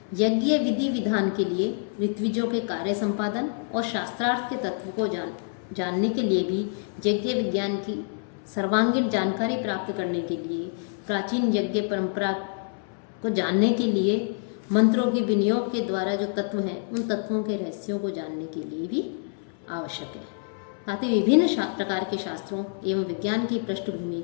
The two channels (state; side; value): silent; right; 60 dB below the other